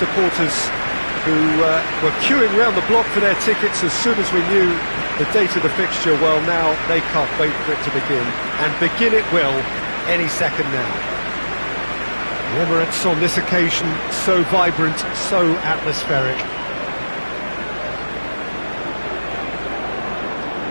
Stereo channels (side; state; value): both; inverted; correlation -1.00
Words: who were queuing round the block for their tickets as soon as we knew the date of the fixture, well, now they can't wait for it to begin, and begin it will any second now. The Emirates on this occasion so vibrant, so atmospheric.